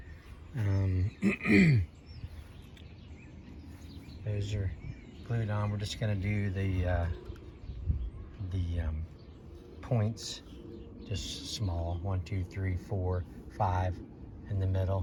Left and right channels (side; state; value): both; identical; correlation 1.00